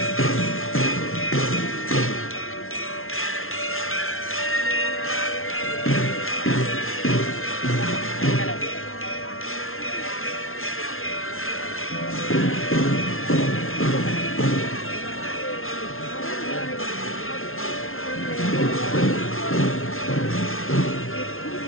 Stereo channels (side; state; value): right; late; 0.61 ms